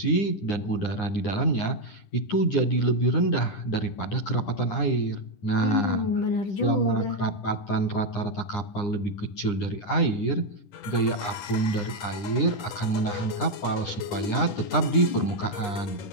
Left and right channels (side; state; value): right; late; 9.8 ms